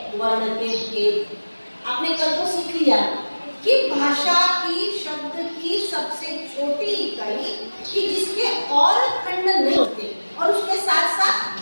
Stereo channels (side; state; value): both; inverted; correlation -1.00